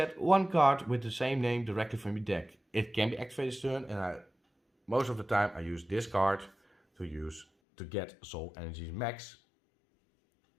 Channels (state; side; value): drops out; right; at 7.5 s